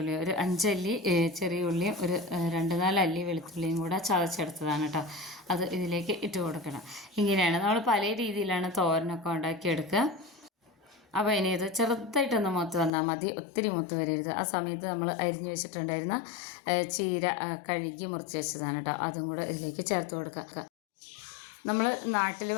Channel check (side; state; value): right; drops out; at 12.9 s